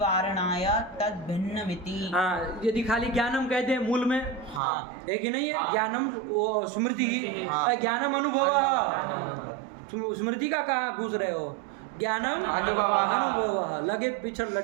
वारणाय तद भिन्नमिति। हाँ, यदि खाली ज्ञानम कहते हैं मूल में, हाँ। है कि नहीं है? ज्ञानम वो स्मृति ही, हाँ। ज्ञानम अनुभव। स्मृति का कहाँ घुस रहे हो? ज्ञानम अनुभव, लगे पिछड़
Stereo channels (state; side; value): drops out; left; at 4.6 s